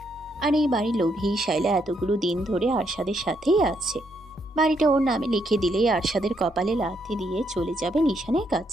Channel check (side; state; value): both; normal; correlation 0.75